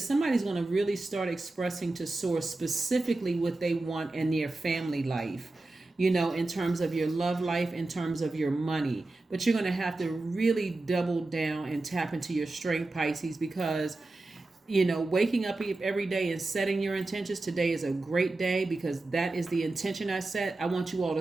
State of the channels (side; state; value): left; quieter; 3.0 dB